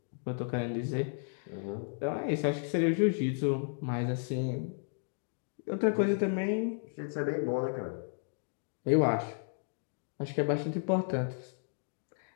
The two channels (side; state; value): right; silent; digital silence